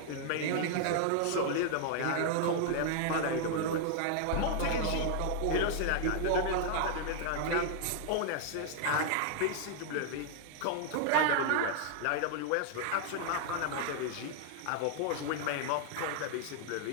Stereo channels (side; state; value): both; different; correlation 0.00